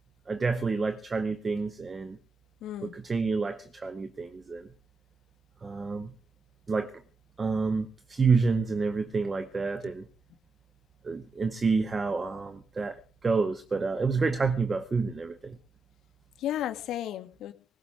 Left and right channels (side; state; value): left; quieter; 3.6 dB